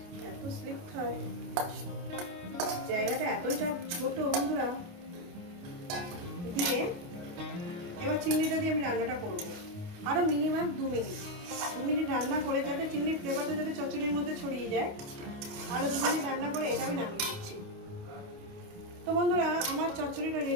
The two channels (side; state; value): left; late; 28 ms